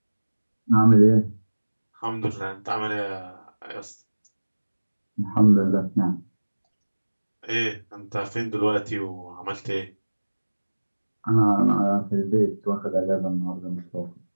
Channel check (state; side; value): inverted; both; correlation -1.00